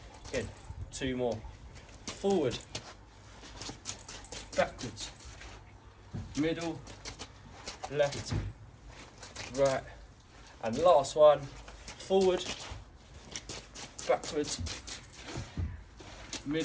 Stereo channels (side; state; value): both; identical; correlation 1.00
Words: in. 2 more. Forward, backwards, middle, left, right, and last one. Forward, backwards,